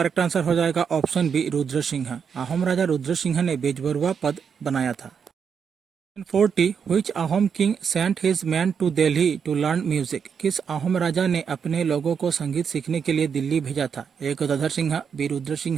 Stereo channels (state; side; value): quieter; left; 6.8 dB